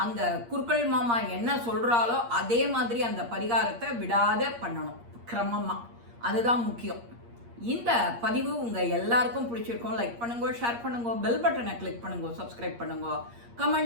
அங்கே குருக்கள் மாமா என்ன சொல்கிறாலோ அதே மாதிரி அந்த பரிகாரத்தை விடாத பண்ணணும் கிரமமாக, அதுதான் முக்கியம். இந்த பதிவு உங்கள் எல்லாருக்கும் பிடிச்சிருக்கும். லைக் பண்ணுங்க, ஷேர் பண்ணுங்க, பெல் பட்டனை கிளிக் பண்ணுங்க, சப்ஸ்கிரைப் பண்ணுங்க,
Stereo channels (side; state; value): left; late; 8.5 ms